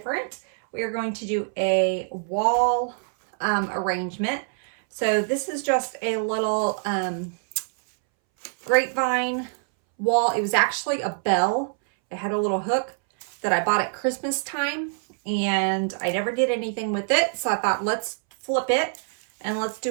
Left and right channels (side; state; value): left; silent; 62 dB below the other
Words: We are going to do a wall arrangement. So this is just a little grapevine wall. It was actually a bell. It had a little hook that I bought at Christmas time and I never did anything with it. So I thought, let's flip it and let's